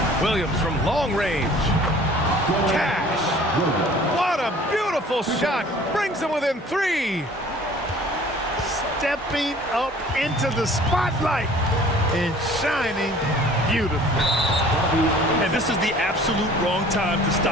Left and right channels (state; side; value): normal; both; correlation 0.50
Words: Williams from long range. Cash. What a beautiful shot. Brings him within 3. Stepping up into the spotlight and shining beautifully. And this is the absolute wrong time to